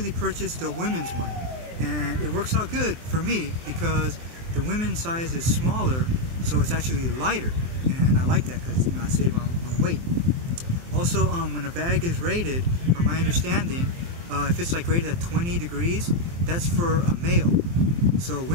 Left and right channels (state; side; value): late; left; 23 ms